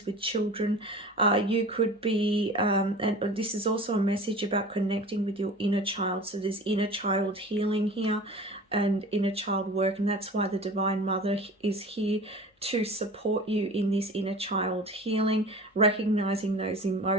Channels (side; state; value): both; normal; correlation 0.38